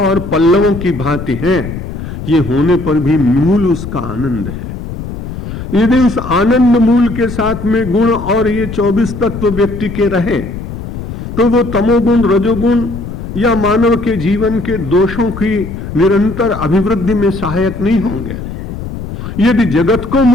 और पल्लवों की भांति हैं, ये होने पर भी मूल उसका आनंद है। यदि उस आनंद मूल के साथ में गुण और ये 24 तत्व व्यक्ति के रहे तो वो तमोगुण, रजोगुण या मानव के जीवन के दोषों की निरंतर अभिवृद्धि में सहायक नहीं होंगे। यदि जगत को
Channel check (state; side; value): noise; left; rumble, 8 dB below the sound